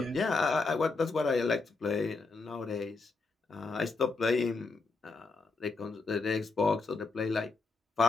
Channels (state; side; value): quieter; right; 3.9 dB